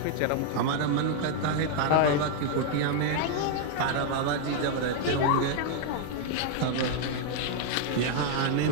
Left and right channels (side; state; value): both; different; correlation 0.00